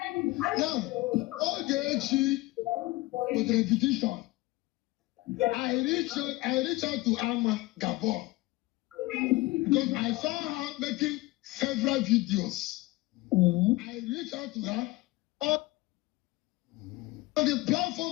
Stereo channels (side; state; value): right; quieter; 20.5 dB